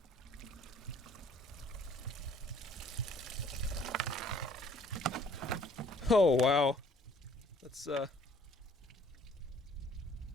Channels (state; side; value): normal; both; correlation 0.58